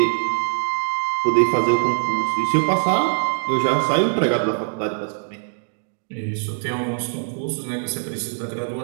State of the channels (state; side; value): silent; left; digital silence